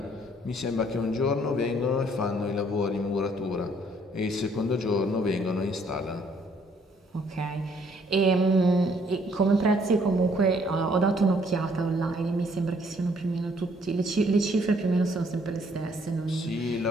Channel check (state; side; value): normal; both; correlation 0.64